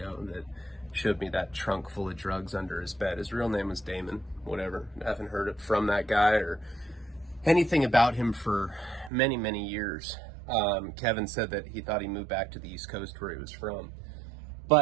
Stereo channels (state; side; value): drops out; left; at 9.1 s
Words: that showed me that trunk full of drugs under his bed, his real name was Damon, whatever. I haven't heard it from that guy or anything about him for many, many years. Kevin said that he thought he moved back to the East Coast where he was from.